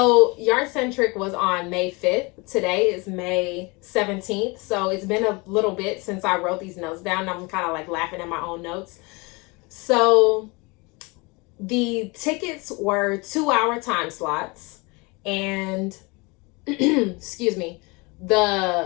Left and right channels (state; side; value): quieter; right; 27.1 dB